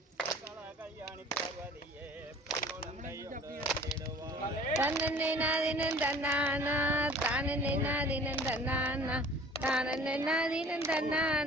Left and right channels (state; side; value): normal; both; correlation 0.47